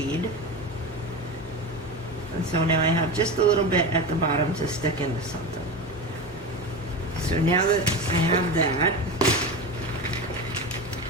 And so now I have just a little bit at the bottom to stick into something. So now that I have that,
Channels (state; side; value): normal; both; correlation 0.24